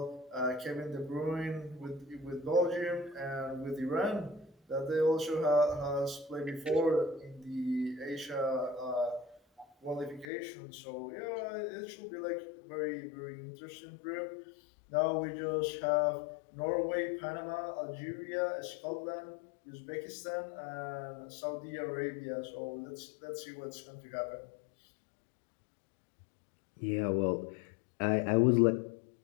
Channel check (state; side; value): drops out; right; at 10.2 s